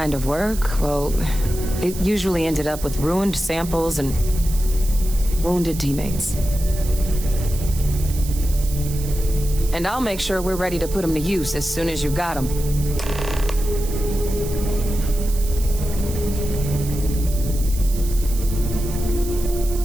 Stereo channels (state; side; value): noise; right; hiss, 12 dB below the sound